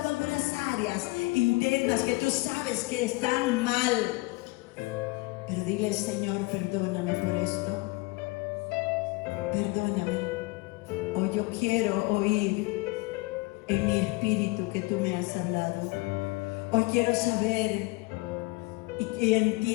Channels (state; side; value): quieter; right; 22.8 dB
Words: algunas áreas internas que tú sabes que están mal. Pero dile, Señor, perdóname por esto. Perdóname. Hoy yo quiero oír en mi espíritu que tú me has hablado. Hoy quiero saber y